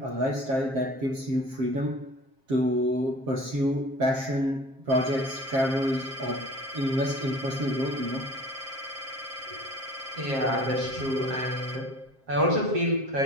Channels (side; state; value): left; late; 7.5 ms